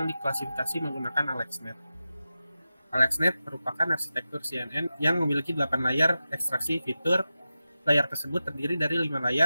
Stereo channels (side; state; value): both; inverted; correlation -0.93